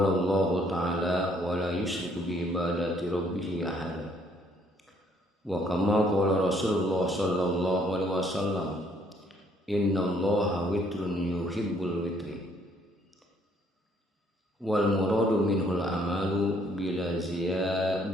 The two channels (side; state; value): both; normal; correlation 0.65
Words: Allah ta'ala wa la yusyriku bi ibadati rabbih ahada wa kama qala Rasulullah sallallahu alaihi wasallam innallaha witrun yuhibbul witri wal muradu minhul amalu bila